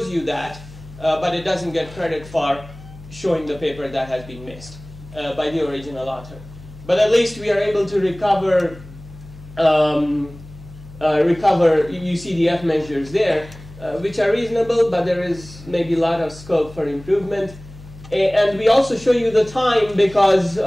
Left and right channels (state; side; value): noise; left; hum, 18 dB below the sound